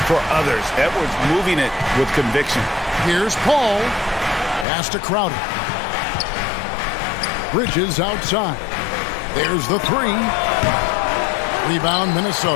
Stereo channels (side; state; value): right; drops out; at 4.7 s